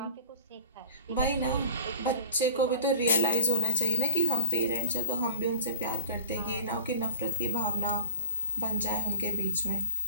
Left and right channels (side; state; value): both; inverted; correlation -0.53